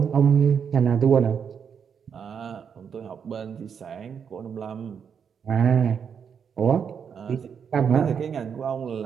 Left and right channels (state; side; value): quieter; left; 7.1 dB